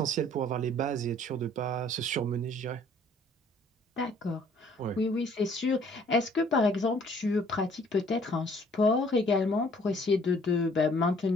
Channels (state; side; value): normal; both; correlation 0.58